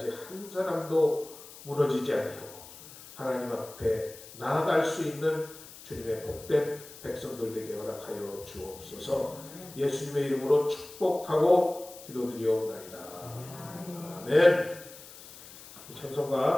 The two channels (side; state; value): left; noise; hiss, 17 dB below the sound